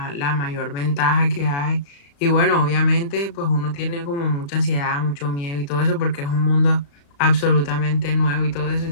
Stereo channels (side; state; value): right; late; 35 ms